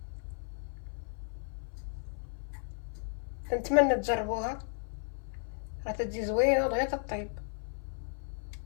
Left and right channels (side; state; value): right; silent; 55 dB below the other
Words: نتمنى تجربوها، راه تجي زوينه دغيا تطيب.